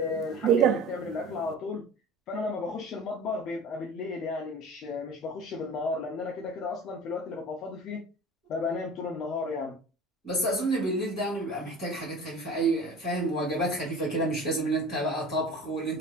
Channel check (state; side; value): normal; both; correlation 0.39